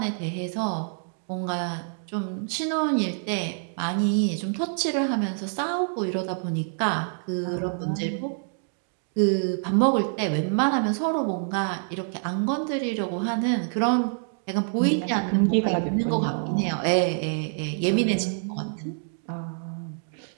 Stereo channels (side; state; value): left; silent; digital silence